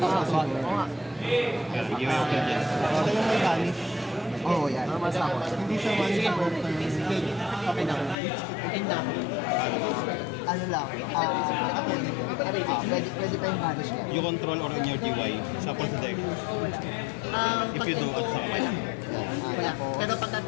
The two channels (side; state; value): right; drops out; at 8.2 s